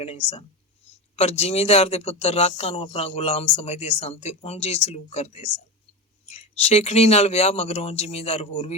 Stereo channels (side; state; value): both; normal; correlation 0.21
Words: ਸਨ। ਪਰ ਜ਼ਿਮੀਂਦਾਰ ਦੇ ਪੁੱਤਰ ਰਾਕਾਂ ਨੂੰ ਆਪਣਾ ਗੁਲਾਮ ਸਮਝਦੇ ਸਨ ਤੇ ਉਂਝ ਹੀ ਸਲੂਕ ਕਰਦੇ ਸਨ। ਸ਼ੇਖਣੀ ਨਾਲ ਵਿਆਹ ਮਗਰੋਂ ਜ਼ਿਮੀਂਦਾਰ ਹੋਰ